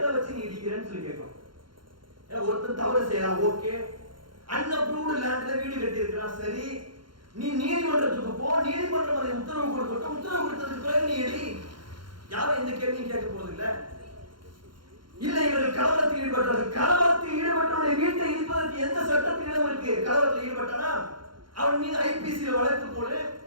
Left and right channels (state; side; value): late; left; 0.72 ms